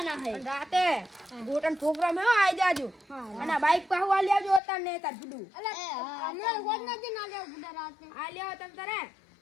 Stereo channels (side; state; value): right; drops out; at 4.6 s